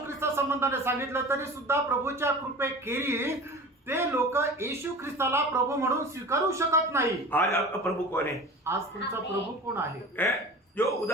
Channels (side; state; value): both; normal; correlation 0.37